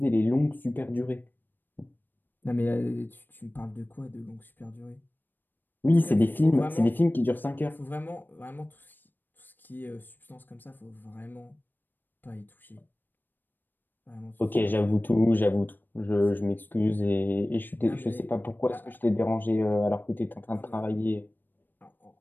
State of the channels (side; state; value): right; late; 0.093 ms